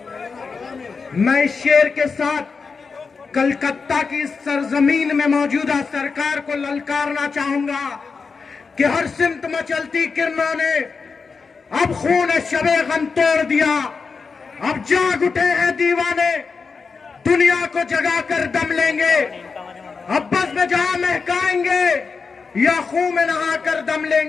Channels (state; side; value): quieter; right; 4.9 dB